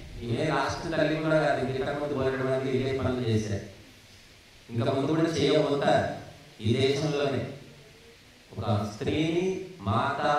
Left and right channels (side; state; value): both; identical; correlation 1.00